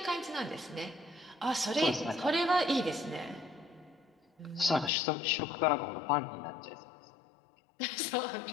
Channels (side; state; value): right; drops out; at 4.9 s